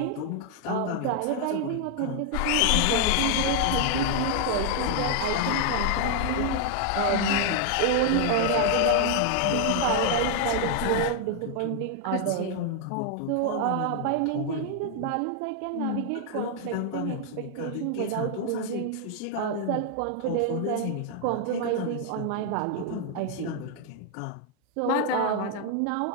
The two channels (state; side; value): different; both; correlation 0.00